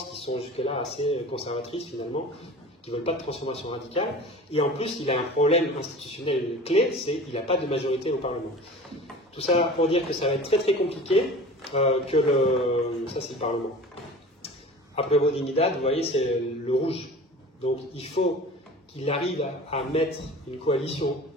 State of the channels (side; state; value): both; normal; correlation 0.39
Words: qui sont jusque-là assez conservatrices, finalement, qui ne veulent pas de transformation radicale. Et en plus, il a un problème institutionnel clé, c'est qu'il n'a pas de majorité au Parlement. Tout ça pour dire que ça va être très très compliqué, ça c'est le Parlement. Après Dignidad, vous voyez, c'est le rouge. Donc il faut qu'il arrive à mettre une coalition